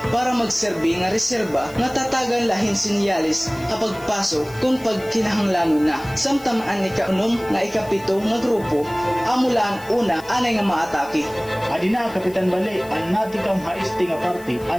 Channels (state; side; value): noise; left; hiss, 21 dB below the sound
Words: para magserbi nga reserba nga tatagan lahin sinyalis kapag pasok kung pagkinahanglan na. Samtang ang ikaunom nga ikapito nga grupo amula ang una anay nga maatake. Adina, Kapitan Bali, ang natikang haisti nga parte,